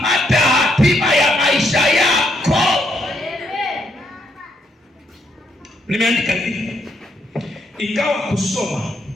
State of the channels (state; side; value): normal; both; correlation 0.75